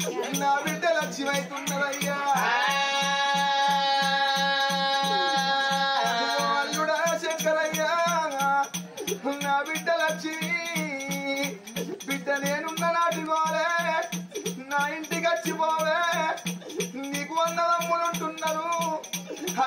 లక్ష్మి అవుతున్నదయ్యా అల్లుడా శంకరయ్య నా బిడ్డ లక్ష్మి బిడ్డ నేనున్న నాటి పోలే నా ఇంటికి వచ్చిపోవే నీకు 100 తమ్ములు ఉంటున్నారు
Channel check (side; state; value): both; identical; correlation 1.00